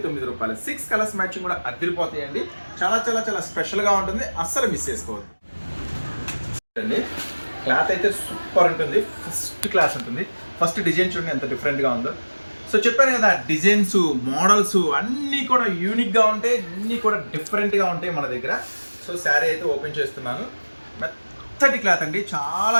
రూపాయలు. 6 కలర్స్ మ్యాచింగ్ కూడా అదిరిపోతాయండి. చాలా చాలా చాలా స్పెషల్గా ఉంటుంది. అస్సలు మిస్ చేసుకోవద్దు. క్లాత్ అయితే సూపర్ ఉంటుంది. ఫస్ట్ క్లాస్ ఉంటుంది. ఫస్ట్ డిజైన్ చూడండి ఎంత డిఫరెంట్గా ఉందో. సో చెప్పాను కదా, డిజైన్స్, మోడల్స్ అన్నీ కూడా యూనిక్గా ఉంటాయి, అన్నీ కూడా డిఫరెంట్గా ఉంటాయి మన దగ్గర. సో సో శారీ అయితే ఓపెన్ చేస్తున్నాను. మెత్తటి క్లాత్ అండి, చాలా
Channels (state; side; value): inverted; both; correlation -1.00